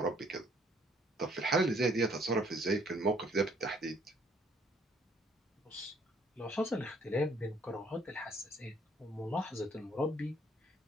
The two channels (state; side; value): normal; both; correlation 0.63